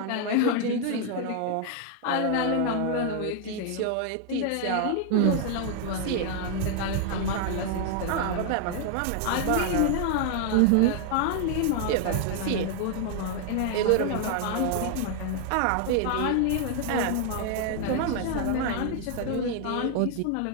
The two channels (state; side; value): different; both; correlation 0.00